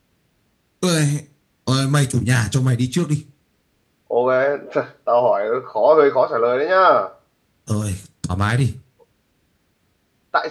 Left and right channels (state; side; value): identical; both; correlation 1.00